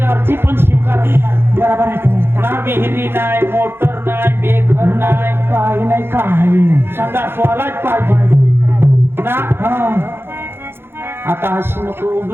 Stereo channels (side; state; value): left; late; 0.11 ms